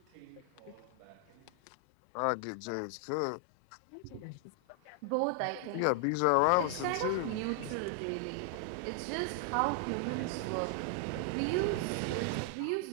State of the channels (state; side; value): different; both; correlation 0.00